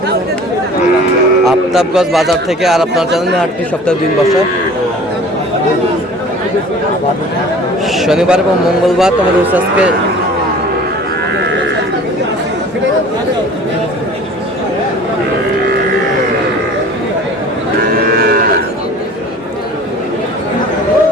আফতাবগঞ্জ বাজার থেকে। আর আপনার জানেন হাটটি সপ্তাহে 2 দিন বসে, শনিবার এবং মঙ্গলবার। তোমাদের হচ্ছে আজকে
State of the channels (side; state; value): both; normal; correlation 0.45